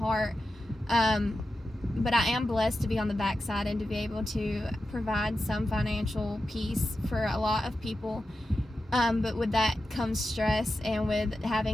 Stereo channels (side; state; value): both; normal; correlation 0.91